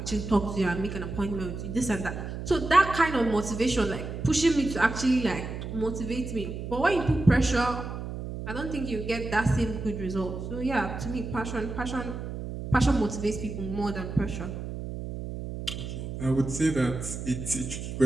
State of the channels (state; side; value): noise; right; hum, 7 dB below the sound